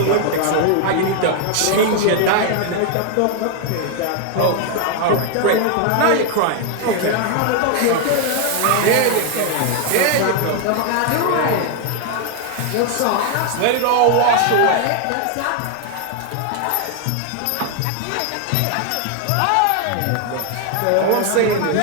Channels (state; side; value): different; both; correlation 0.00